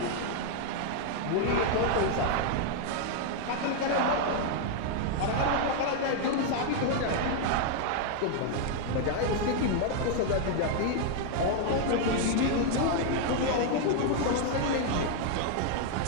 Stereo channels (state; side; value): different; both; correlation 0.00